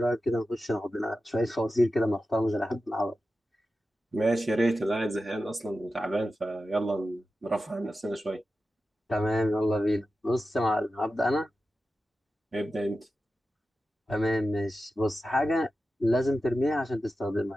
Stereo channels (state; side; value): normal; both; correlation 0.92